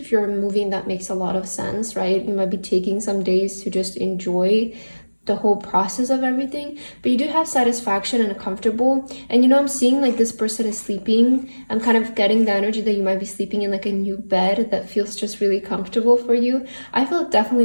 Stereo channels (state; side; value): inverted; both; correlation -1.00